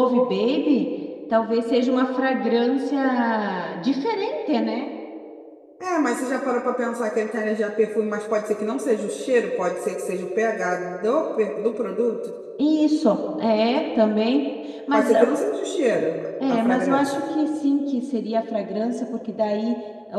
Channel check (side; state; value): both; identical; correlation 1.00